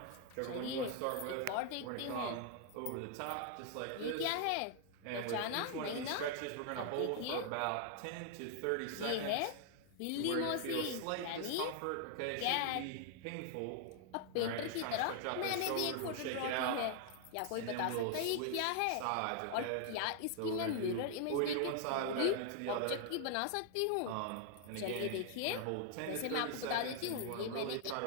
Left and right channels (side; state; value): both; different; correlation 0.00